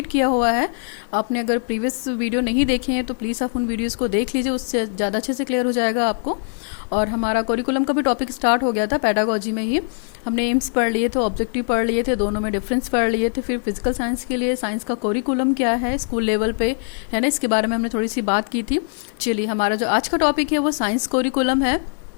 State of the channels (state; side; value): silent; right; digital silence